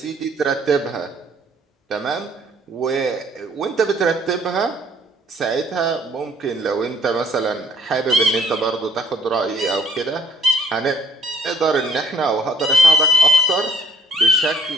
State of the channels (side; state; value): both; normal; correlation 0.61